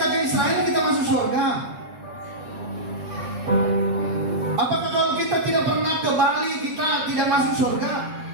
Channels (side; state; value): left; late; 8.5 ms